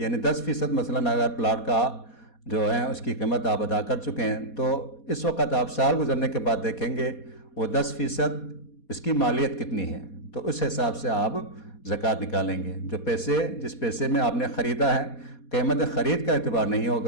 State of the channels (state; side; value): late; right; 4.2 ms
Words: 10% مثلاً اگر پلاٹ کا جو ہے اس کی قیمت آپ ادا کر چکے ہیں، تو اس وقت آپ سال گزرنے کے بعد دیکھیں گے وہ 10% اس کی مالیت کتنی ہے، تو اس حساب سے آپ زکوٰۃ نکالیں گے۔ جو پیسے جس پیسے میں آپ نے خریدا ہے، قیمت خرید کا اعتبار نہیں